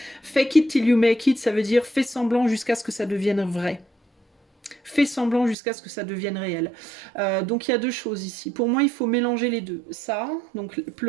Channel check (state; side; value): drops out; left; at 5.6 s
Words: Fake it till you make it, ça veut dire fais semblant jusqu'à ce que ça devienne vrai. Fais semblant jusqu'à ce que ça devienne réel. Donc il y a deux choses ici. Pour moi, il faut mélanger les deux. Ça, donc